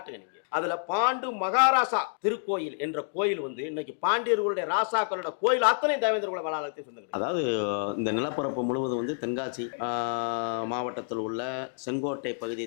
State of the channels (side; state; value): right; silent; digital silence